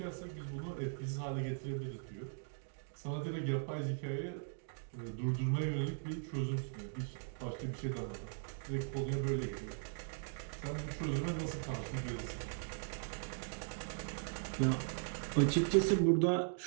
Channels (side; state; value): left; silent; digital silence